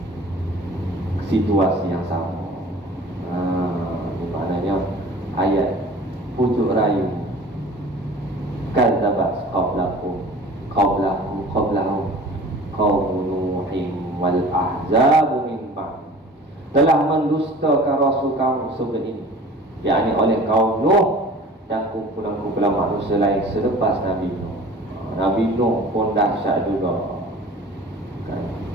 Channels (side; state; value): both; normal; correlation 0.44